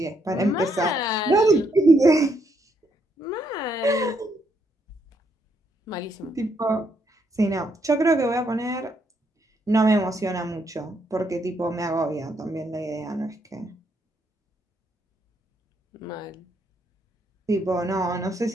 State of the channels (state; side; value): normal; both; correlation 0.75